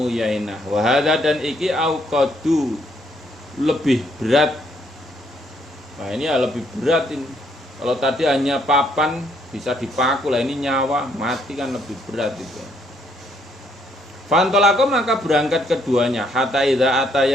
Yainah, wahada dan iki auqadu lebih berat. Nah ini ya lebih berat ini. Kalau tadi hanya papan bisa dipaku, lah ini nyawa mati kan lebih berat itu. Fantolako maka berangkat keduanya hatta idza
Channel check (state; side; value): normal; both; correlation 0.70